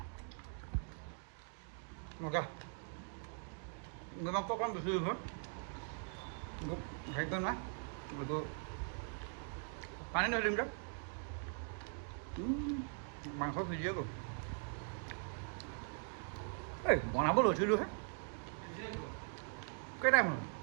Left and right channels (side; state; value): left; silent; 50 dB below the other